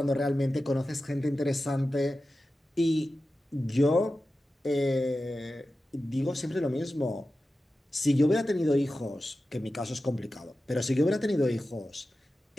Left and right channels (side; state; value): both; normal; correlation 0.93